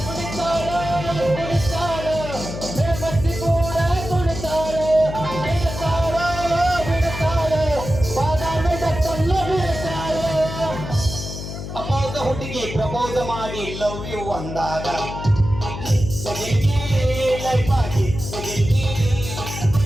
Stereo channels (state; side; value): noise; left; hum, 8 dB below the sound